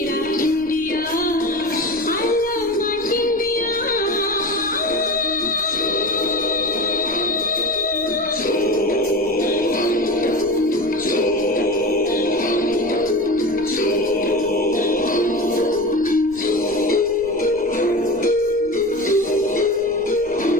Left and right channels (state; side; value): noise; left; rumble, 23 dB below the sound